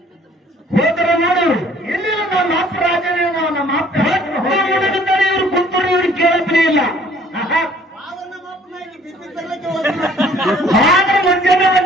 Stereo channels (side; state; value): both; normal; correlation 0.57